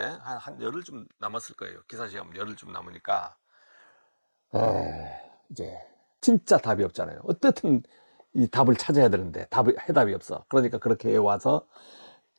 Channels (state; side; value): inverted; both; correlation -1.00